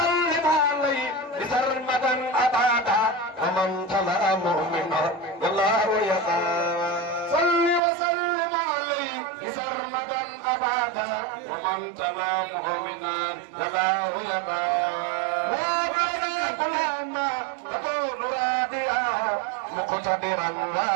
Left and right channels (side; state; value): left; drops out; at 7.8 s